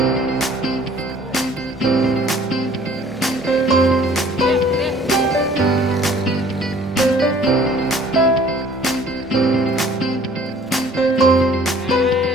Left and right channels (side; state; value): both; normal; correlation 0.54